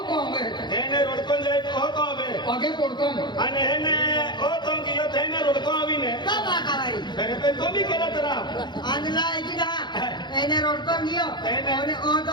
तो हमें हेने रोडकोन जाय तो तो आवे आगे पड़कन आणि हेने ओ तो कियो हेने रोडको आवीने का बाका भाई अरे पे तो भी केला तरा आंधला एकी का एने रोडको गियो एने- ओने ओ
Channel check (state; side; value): late; right; 0.21 ms